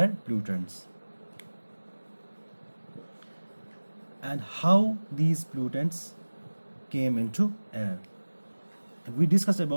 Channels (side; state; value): both; inverted; correlation -1.00